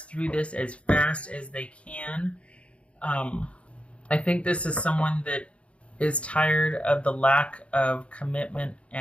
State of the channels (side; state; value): right; late; 0.061 ms